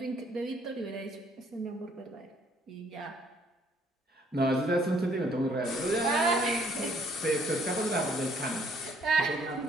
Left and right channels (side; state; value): both; normal; correlation 0.64